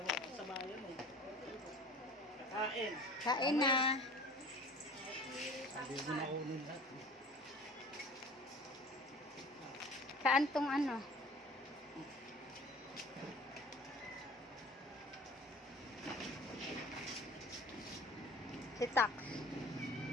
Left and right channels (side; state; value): both; normal; correlation 0.44